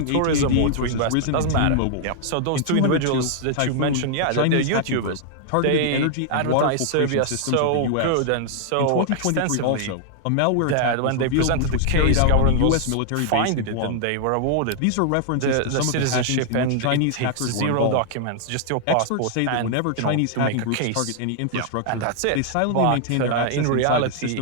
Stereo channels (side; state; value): both; different; correlation -0.01